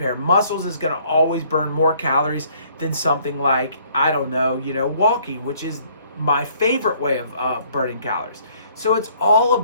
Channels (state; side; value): inverted; both; correlation -0.62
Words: muscles is going to always burn more calories than something like, I don't know, walking, which is my favorite way of burning calories. So it's all a